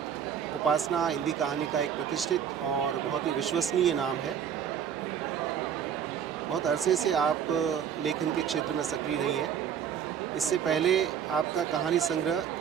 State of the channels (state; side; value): quieter; left; 8.4 dB